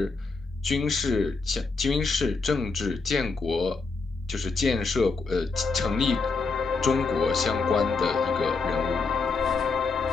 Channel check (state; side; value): quieter; right; 4.3 dB